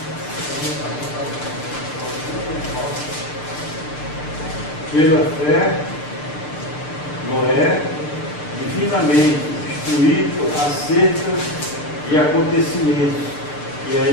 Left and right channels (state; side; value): late; right; 6.7 ms